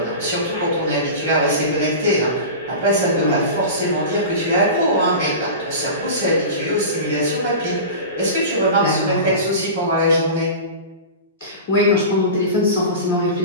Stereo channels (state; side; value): inverted; both; correlation -0.30